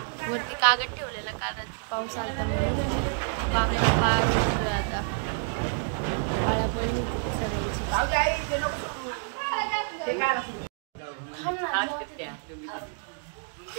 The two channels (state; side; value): silent; left; 59 dB below the other